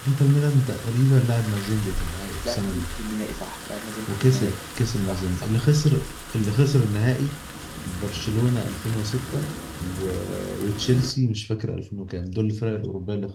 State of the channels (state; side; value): identical; both; correlation 1.00